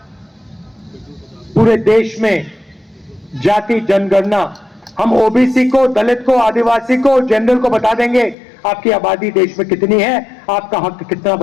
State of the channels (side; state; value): right; drops out; at 8.3 s